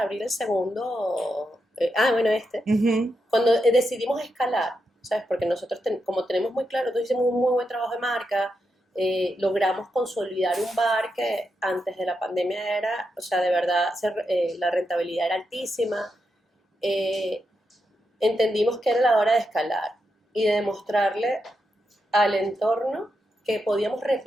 abrir el segundo, cuando decidimos escalar, ¿sabes? Porque nosotros, como tenemos muy claro, nosotros hicimos un muy buen trabajo de marca, logramos consolidar un bar que antes de la pandemia era, de verdad, la rentabilidad era altísima. Entendimos que era la hora de escalar y de demostrarle al entorno que podíamos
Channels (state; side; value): normal; both; correlation 0.85